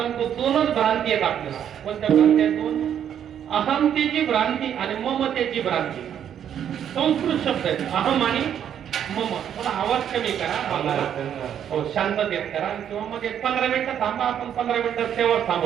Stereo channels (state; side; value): quieter; left; 9.3 dB